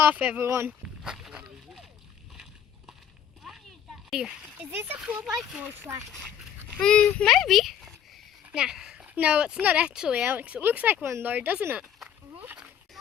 everyone. Is this a 4x4 track? Maybe. Nah. No, it's not actually, Alex. It looks like one though, doesn't it?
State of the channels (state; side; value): quieter; right; 9.2 dB